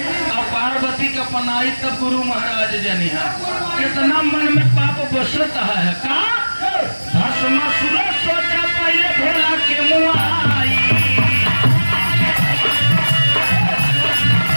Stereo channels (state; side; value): inverted; both; correlation -1.00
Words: और पार्वती का पनाई तब गुरु महाराज जनी है। कितना मन में पाप बसता है का भस्मासुर सोचा पहले भोला के मुँह आई।